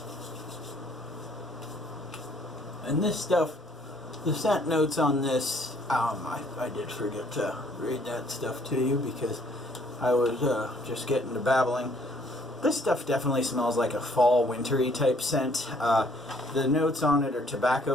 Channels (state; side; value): normal; both; correlation 0.62